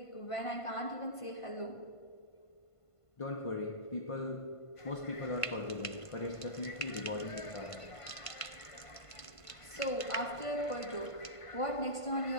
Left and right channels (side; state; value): right; late; 1.5 ms